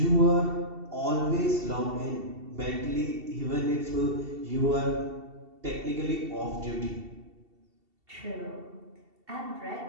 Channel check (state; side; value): late; left; 2.7 ms